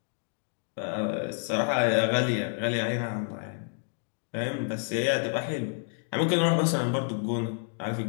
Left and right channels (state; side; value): silent; right; digital silence